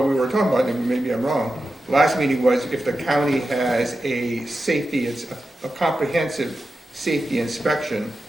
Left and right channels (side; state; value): both; normal; correlation 0.91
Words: we were talking about, and maybe I'm wrong, last meeting was if the county has a safety, it's a comprehensive safety inspection,